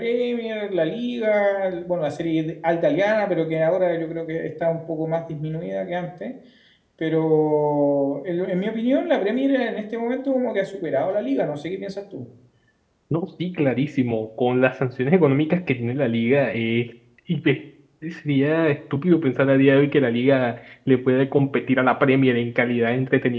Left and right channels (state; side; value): identical; both; correlation 1.00